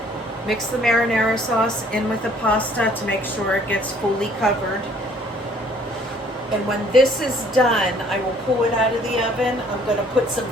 mix the marinara sauce in with the pasta to make sure it gets fully covered. And when this is done, I will pull it out of the oven. I'm going to put some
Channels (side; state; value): both; normal; correlation 0.59